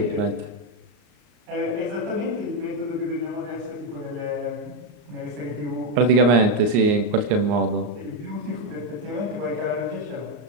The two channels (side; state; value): left; late; 34 ms